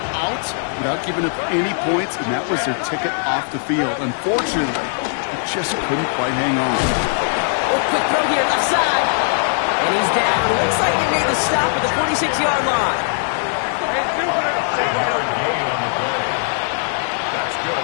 out without giving up any points, and that was their ticket off the field. Unfortunately, they just couldn't quite hang on. Oh, quick throw here, left side. And he's down. Looks like they made the stop at the 46-yard line. That's good for the Jaguars.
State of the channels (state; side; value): silent; right; 66 dB below the other